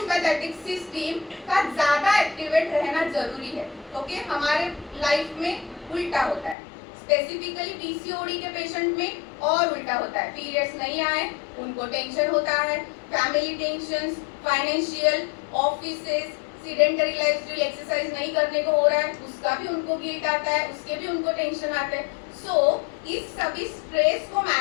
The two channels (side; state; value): right; drops out; at 6.6 s